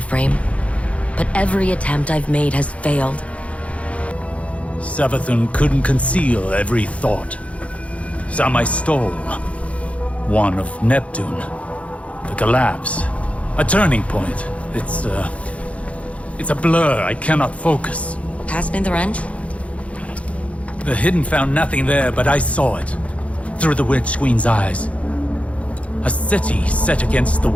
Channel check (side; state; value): right; late; 0.064 ms